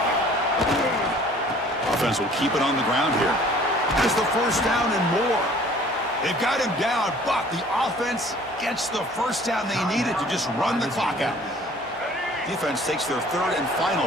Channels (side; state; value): both; normal; correlation 0.52